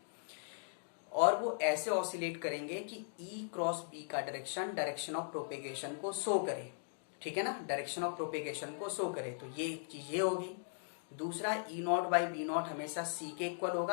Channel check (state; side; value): silent; right; digital silence